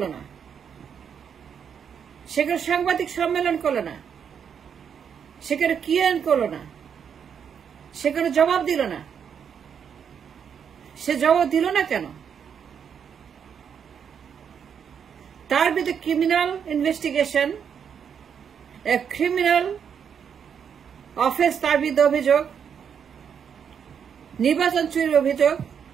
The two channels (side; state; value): left; quieter; 7.5 dB